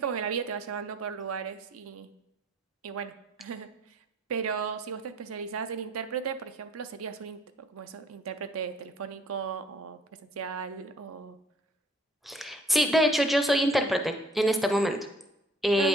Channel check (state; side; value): normal; both; correlation 0.57